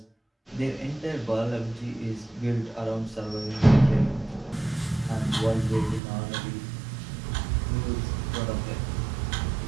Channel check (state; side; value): drops out; left; at 6.0 s